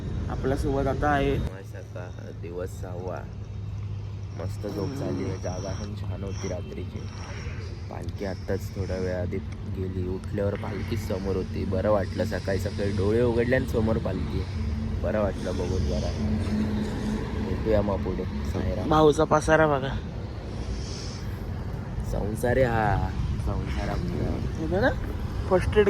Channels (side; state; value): both; identical; correlation 1.00